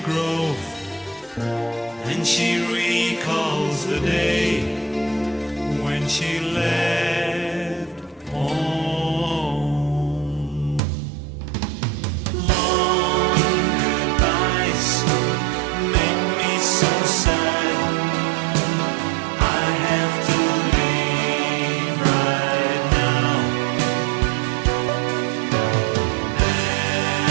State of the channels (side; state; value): left; drops out; at 10.8 s